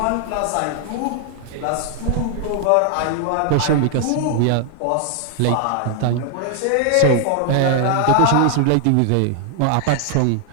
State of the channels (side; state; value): both; different; correlation 0.00